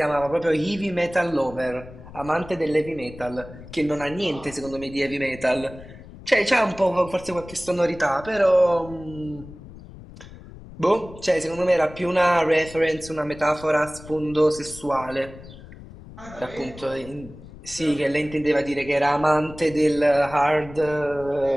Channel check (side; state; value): left; noise; rumble, 17 dB below the sound